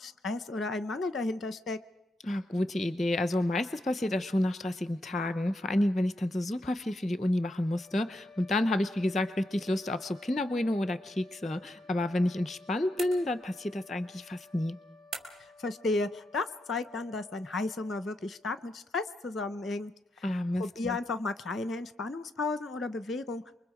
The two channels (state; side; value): normal; both; correlation 0.83